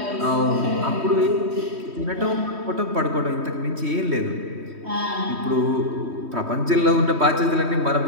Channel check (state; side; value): late; left; 3.1 ms